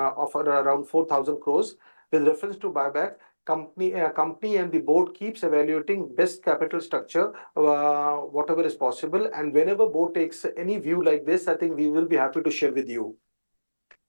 around 4,000 crores. With reference to buyback, company and the board keeps evaluating best capital structure, whatever is possible, and whenever board takes any view like this, I think we will be happy to share with you.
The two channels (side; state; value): both; inverted; correlation -1.00